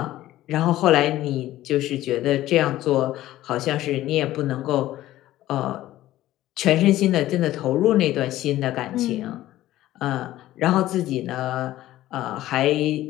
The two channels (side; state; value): right; quieter; 14.8 dB